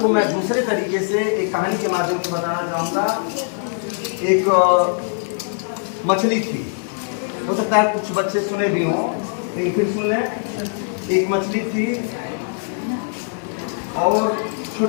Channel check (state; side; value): silent; right; 65 dB below the other